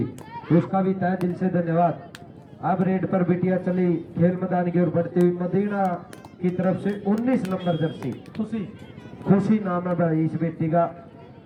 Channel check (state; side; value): identical; both; correlation 1.00